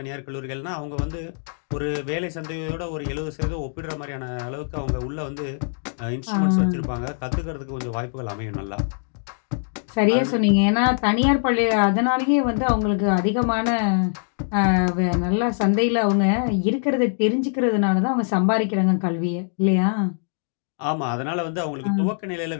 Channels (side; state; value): right; silent; digital silence